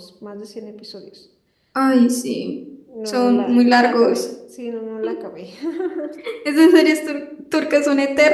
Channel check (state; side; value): identical; both; correlation 1.00